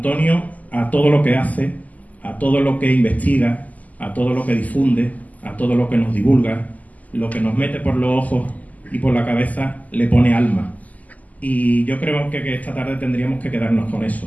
a todo lo que hace, a todo lo que investiga, a todo lo que difunde, a todo lo que nos divulga, lo que nos mete por los ojos y por la cabeza, le pone alma. Y yo creo que esta tarde tendríamos que quedarnos con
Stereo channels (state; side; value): late; right; 0.077 ms